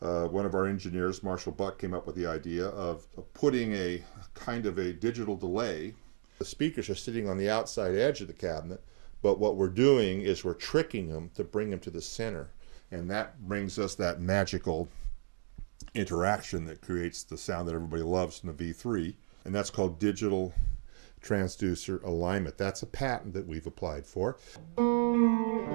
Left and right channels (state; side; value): silent; left; digital silence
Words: of our engineers, Marshall Buck, came up with the idea of putting a kind of a digital delay. The speakers are sitting on the outside edge of the cabinet, but what we're doing is we're tricking them to bring them to the center. And that brings us that magical interaction that creates the sound that everybody loves in the V3. And that's called digital transducer alignment. That's a patent that we've applied for. I